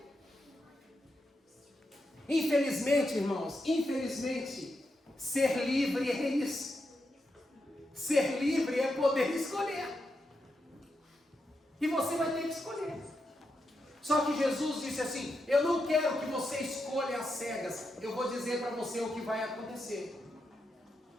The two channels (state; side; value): normal; both; correlation 0.85